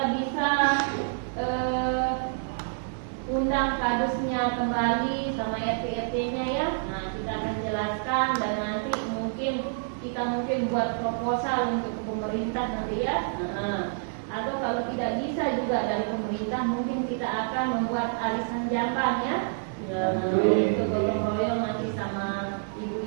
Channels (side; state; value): left; silent; digital silence